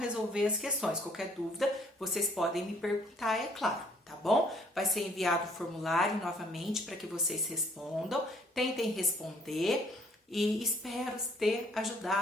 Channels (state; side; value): normal; both; correlation 0.62